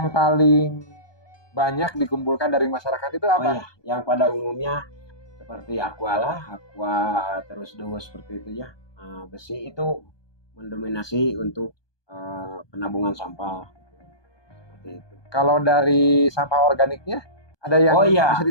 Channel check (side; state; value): right; late; 1.2 ms